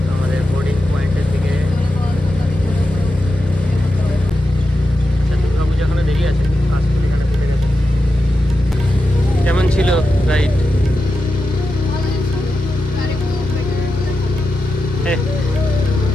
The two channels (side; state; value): both; normal; correlation 0.89